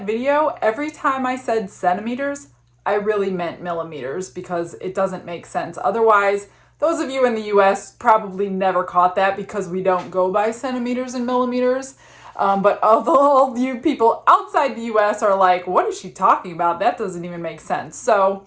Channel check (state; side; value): identical; both; correlation 1.00